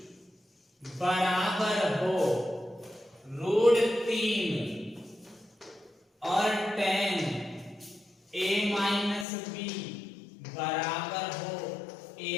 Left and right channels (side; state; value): right; drops out; at 9.2 s